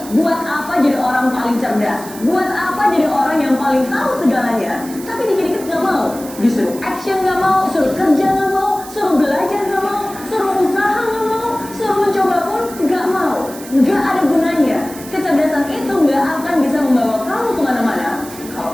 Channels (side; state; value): right; noise; hiss, 15 dB below the sound